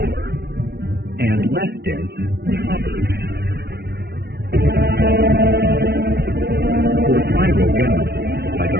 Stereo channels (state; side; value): late; left; 0.47 ms